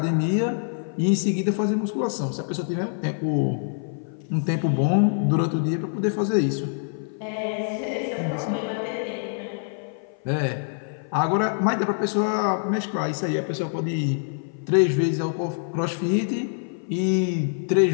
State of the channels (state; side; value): silent; right; 56 dB below the other